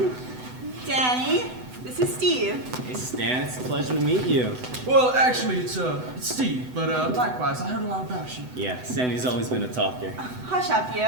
Danny, this is Steve. Hey, Stan, it's a pleasure to meet you. Well, actually, it's Steve, but likewise, I heard a lot about you. Yeah, Sandy's always been a talker. Hush up,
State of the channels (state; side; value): late; left; 8.0 ms